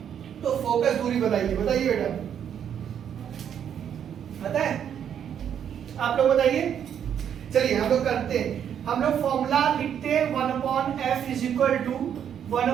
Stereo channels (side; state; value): left; quieter; 8.9 dB